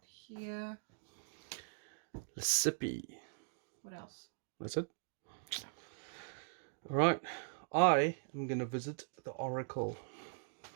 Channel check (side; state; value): left; silent; digital silence